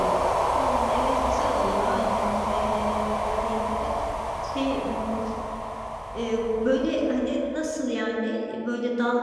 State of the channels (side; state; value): both; identical; correlation 1.00